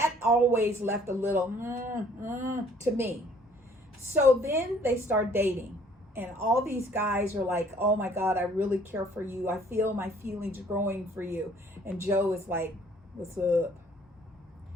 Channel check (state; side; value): normal; both; correlation 0.58